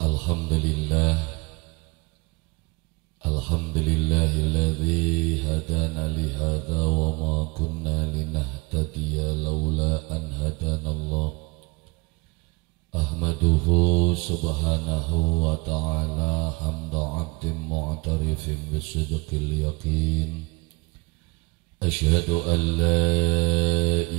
Alhamdulillah, alhamdulillahilladzi hadana lihada wa ma kunna linahtadiya laula an hadanallah. Ahmaduhu subhanahu wa ta'ala hamda abdin mu'tarifin bisidqil yaqin. Ashhadu an la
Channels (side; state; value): left; quieter; 25.8 dB